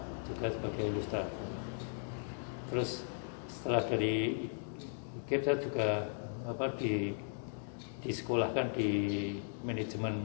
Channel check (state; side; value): silent; right; digital silence